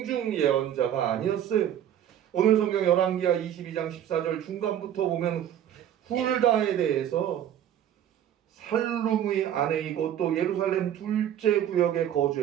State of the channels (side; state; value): left; quieter; 10.4 dB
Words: 예언자가 아니었어요. 오늘 성경 열왕기하 22장 14절 중간부터 보면 훌다에 대해서 살룸의 아내이고 또 예루살렘 둘째 구역에